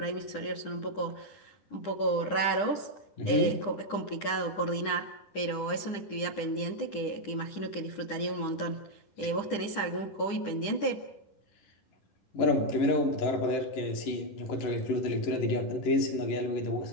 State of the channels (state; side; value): late; right; 10 ms